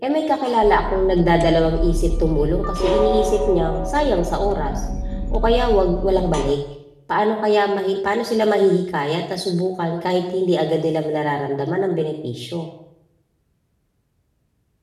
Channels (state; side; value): identical; both; correlation 1.00